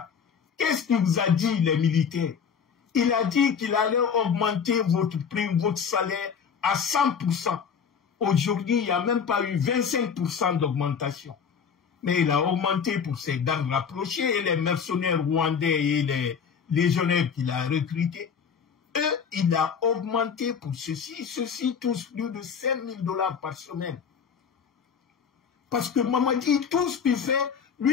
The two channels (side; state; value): right; quieter; 6.7 dB